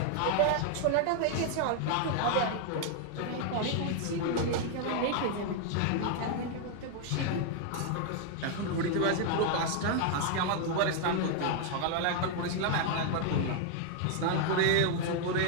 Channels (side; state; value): both; different; correlation 0.00